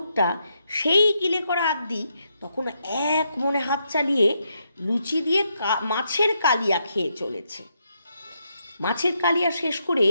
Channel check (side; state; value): both; inverted; correlation -0.80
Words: সেই গিলে করা আদি তখন এক মনে হাত চালিয়ে লুচি দিয়ে মাছের কালিয়া খেয়ে চলেছে। মাছের কালিয়া শেষ করে